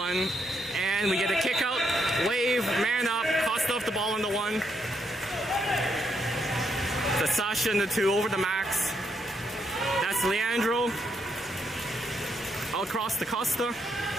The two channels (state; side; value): normal; both; correlation 0.77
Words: And we get a kick out. Wave, man up, Costa off the ball on the 1. That's Sasha in the 2 over the Max. That's Leandro. Across to Costa.